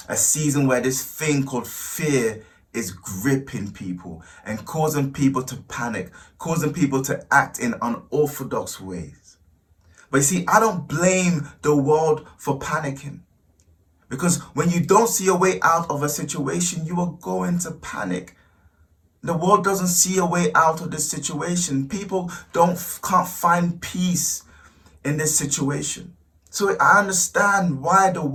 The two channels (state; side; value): identical; both; correlation 1.00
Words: A season where this thing called fear is gripping people and causing people to panic, causing people to act in unorthodox ways. But you see, I don't blame the world for panicking. Because when you don't see a way out of a situation, you are going to panic. The world doesn't see a way out of this situation. People can't find peace in this situation. So I understand why the